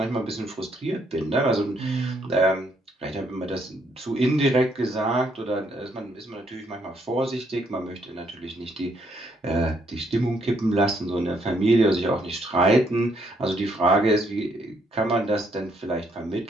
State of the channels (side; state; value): both; normal; correlation 0.72